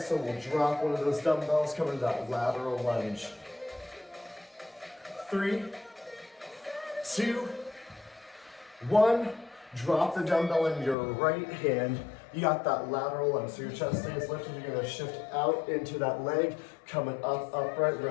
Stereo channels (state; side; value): drops out; right; at 11.0 s